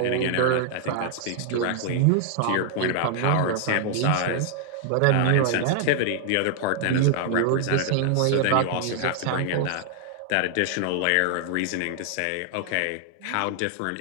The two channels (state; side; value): different; both; correlation 0.00